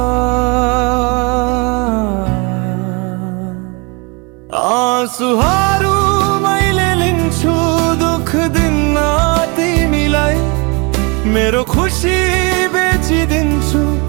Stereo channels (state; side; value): quieter; left; 30.4 dB